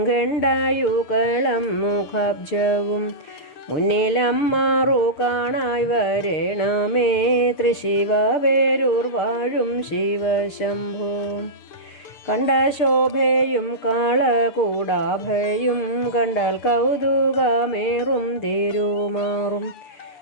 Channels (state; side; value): late; right; 6.7 ms